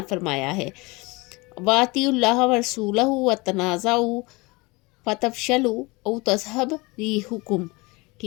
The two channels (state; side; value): quieter; right; 25.0 dB